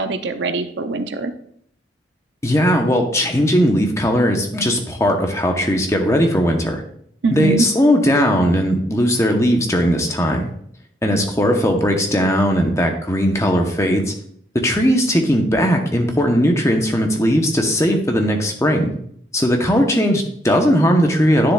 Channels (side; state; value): both; normal; correlation 0.72